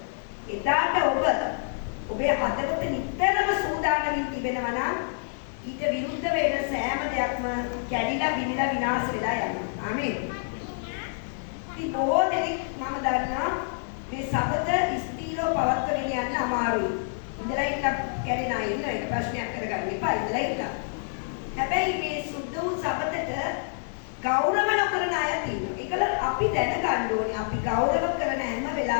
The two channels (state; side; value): silent; right; digital silence